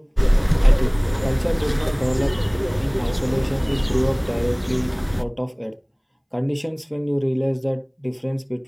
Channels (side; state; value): both; identical; correlation 1.00